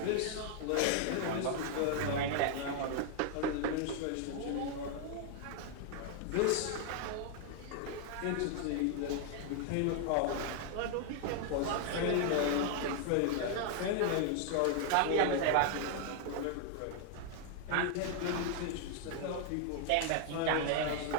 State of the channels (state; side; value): different; both; correlation 0.00